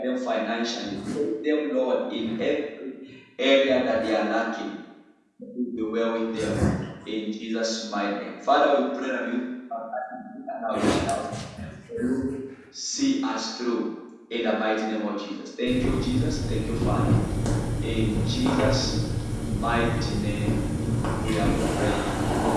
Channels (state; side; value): identical; both; correlation 1.00